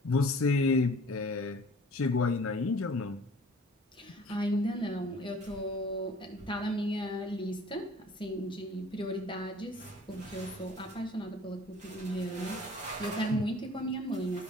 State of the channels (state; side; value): normal; both; correlation 0.49